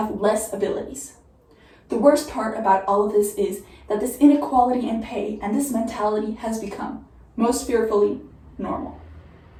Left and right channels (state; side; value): identical; both; correlation 1.00